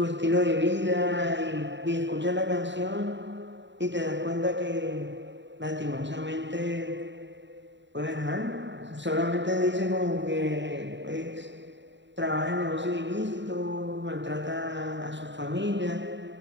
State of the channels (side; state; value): left; late; 0.53 ms